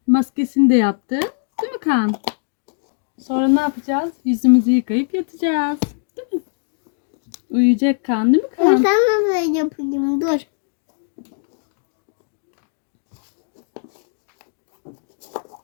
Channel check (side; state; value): right; silent; digital silence